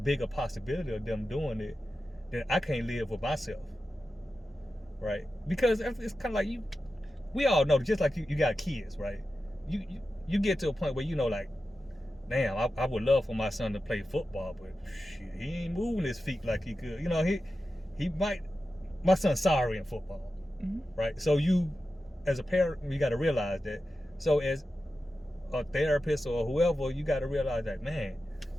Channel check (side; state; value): both; normal; correlation 0.92